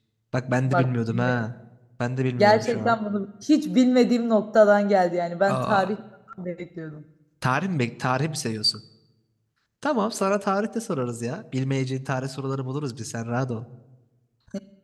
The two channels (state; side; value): identical; both; correlation 1.00